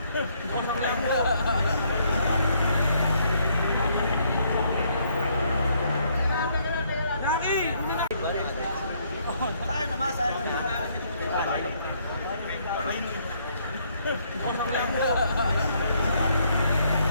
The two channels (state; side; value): inverted; both; correlation -0.69